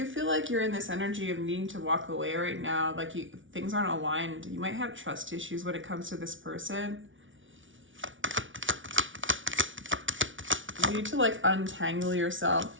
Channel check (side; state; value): left; late; 0.56 ms